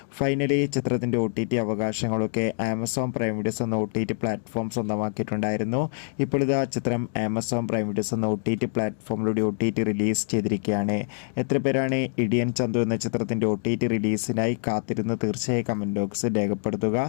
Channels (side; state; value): right; silent; digital silence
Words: ഫൈനലി ചിത്രത്തിൻ്റെ OTT അവകാശങ്ങളൊക്കെ ആമസോൺ പ്രൈം വീഡിയോസ് എന്ന OTT പ്ലാറ്റ്ഫോം സ്വന്തമാക്കിയിട്ടുണ്ടായിരുന്നു. ഇപ്പോൾ ഇതാ ചിത്രം ആമസോൺ പ്രൈം വീഡിയോസ് എന്ന OTT പ്ലാറ്റ്ഫോമിലൂടെ OTT റിലീസ് ചെയ്തിരിക്കുകയാണ്. എത്ര പേരാണ് ഇടിയൻ ചന്തു എന്ന ചിത്രത്തിൻ്റെ OTT റിലീസിനായി കാത്തിരുന്ന് തീർച്ചയായും കമൻറ്റ് ബോക്സിൽ രേഖപ്പെടുത്തുക.